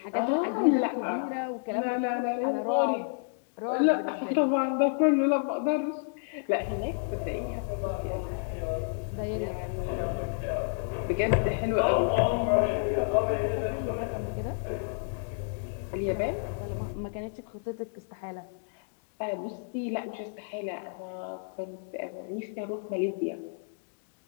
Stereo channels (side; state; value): right; silent; digital silence